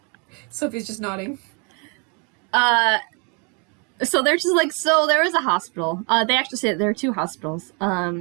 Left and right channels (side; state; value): left; quieter; 34.6 dB